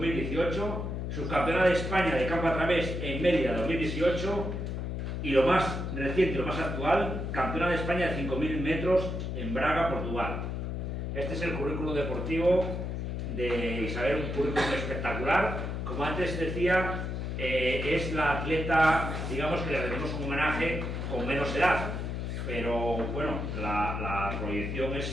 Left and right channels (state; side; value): noise; left; hum, 3 dB below the sound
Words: subcampeona de España de campo a través en Mérida 2018 y lo más reciente, lo más actual, campeona de España de 5000 metros en Braga, Portugal. Este es el currículo deportivo de Isabel, un currículo espectacular. Como antes decía, es la atleta, digamos, que le rendimos un homenaje con menos edad. Pero bueno, la proyección